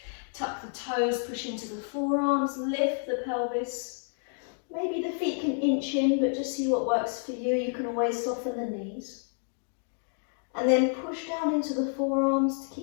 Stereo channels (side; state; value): right; silent; 58 dB below the other